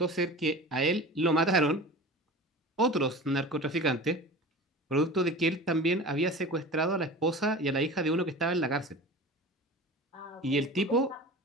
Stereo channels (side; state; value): both; normal; correlation 0.36